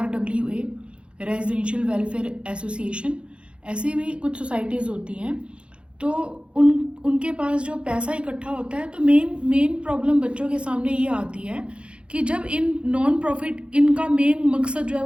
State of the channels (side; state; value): left; late; 0.058 ms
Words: रेजिडेंशियल वेलफेयर एसोसिएशन। ऐसे भी कुछ सोसाइटीज़ होती हैं। तो उनके पास जो पैसा इकट्ठा होता है, तो मेन प्रॉब्लम बच्चों के सामने ये आती है कि जब इन नॉन प्रॉफिट, इनका मेन मकसद जो है